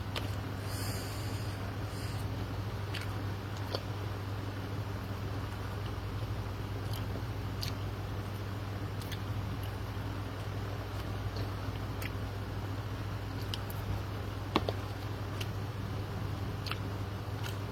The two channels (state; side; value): identical; both; correlation 1.00